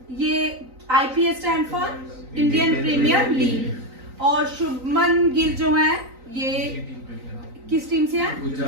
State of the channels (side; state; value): left; late; 3.9 ms